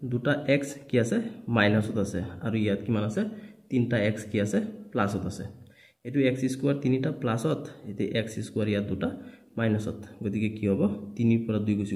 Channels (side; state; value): both; identical; correlation 1.00